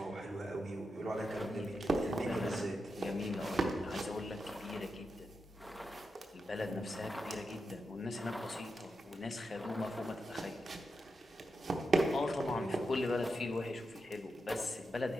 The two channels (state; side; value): normal; both; correlation 0.87